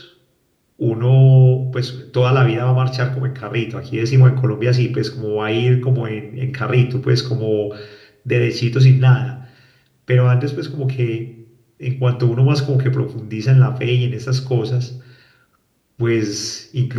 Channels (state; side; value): identical; both; correlation 1.00